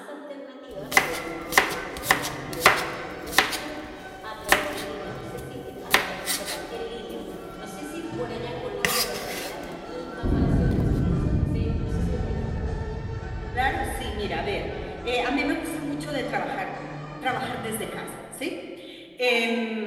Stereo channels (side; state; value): both; identical; correlation 1.00